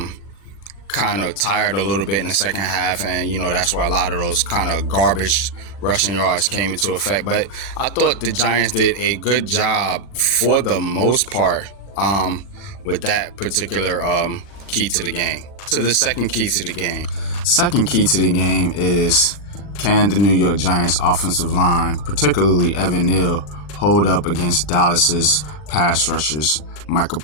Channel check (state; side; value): late; right; 40 ms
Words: kind of tired a little bit in the second half, and that's where a lot of those kind of garbage rushing yards came into effect. But I thought the Giants did a good job for the most part with that particular key to the game. To the second key to the game. Second key to the game is, can the New York Giants offensive line, particularly Evan Neal, hold up against Dallas's pass rushers, Micah